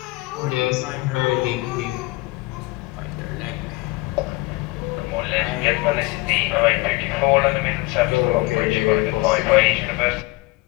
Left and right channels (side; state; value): right; quieter; 21.3 dB